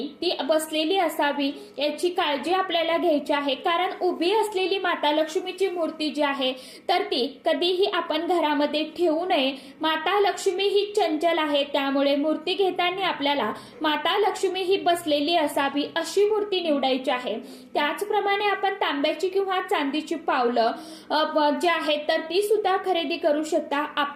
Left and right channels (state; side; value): identical; both; correlation 1.00